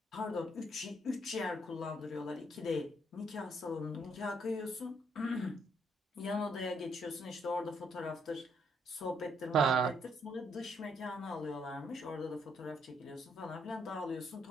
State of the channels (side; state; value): both; normal; correlation 0.71